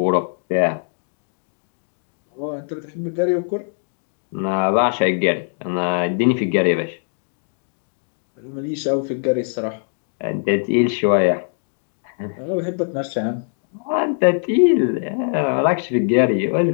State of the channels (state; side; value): silent; right; 65 dB below the other